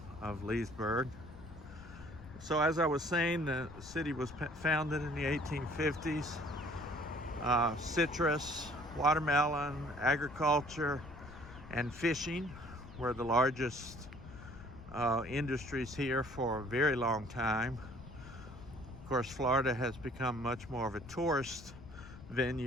Leesburg. So as I was saying, the city was founded in the 1850s. Citrus, watermelon, agriculture, and fishing were the largest industries here for a very long time. Of course, Florida has become much more of a tourist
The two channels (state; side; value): noise; left; rumble, 16 dB below the sound